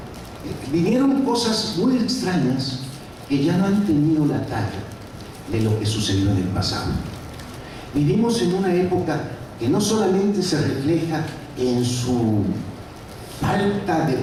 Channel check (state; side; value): identical; both; correlation 1.00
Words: vinieron cosas muy extrañas que ya no han tenido la talla de lo que sucedió en el pasado. Vivimos en una época que no solamente se refleja en su falta de